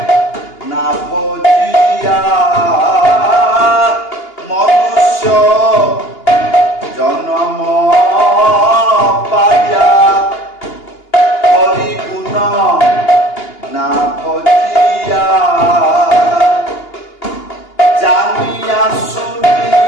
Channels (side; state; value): right; late; 2.8 ms